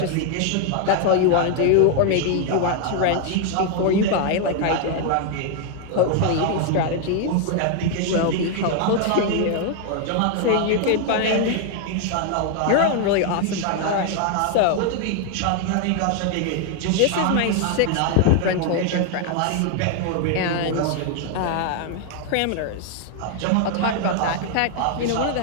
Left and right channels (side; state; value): both; different; correlation 0.00